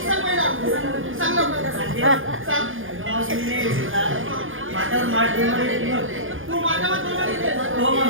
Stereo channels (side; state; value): left; late; 0.59 ms